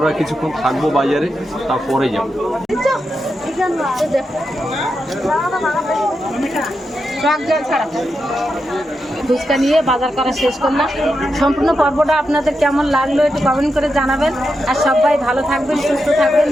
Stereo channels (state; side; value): normal; both; correlation 0.87